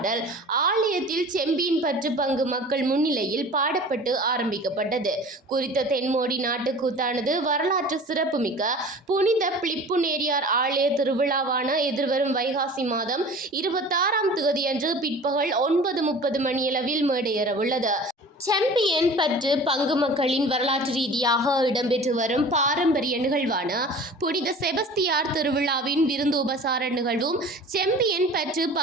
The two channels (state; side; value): normal; both; correlation 0.41